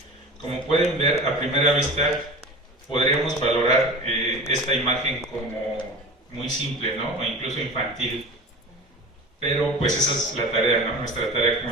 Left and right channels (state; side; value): normal; both; correlation 0.35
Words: Como pueden ver, a primera vista podríamos valorar esta imagen como muy simple, ¿no? O incluso infantil. Pero pues esa es la tarea, ¿no? Nuestra tarea